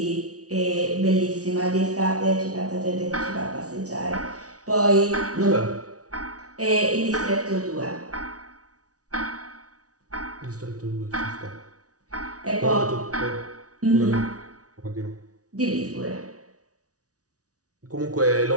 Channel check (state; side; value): late; left; 0.67 ms